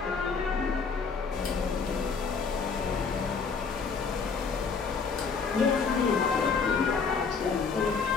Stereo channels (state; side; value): quieter; right; 5.3 dB